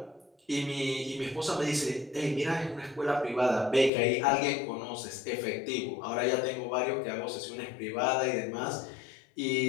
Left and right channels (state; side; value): drops out; right; at 3.9 s